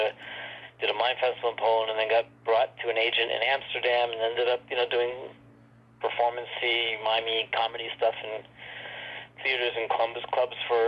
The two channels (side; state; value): both; identical; correlation 1.00